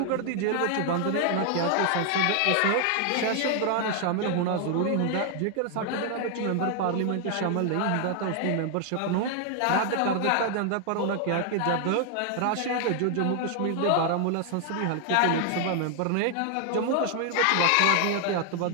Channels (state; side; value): different; both; correlation 0.00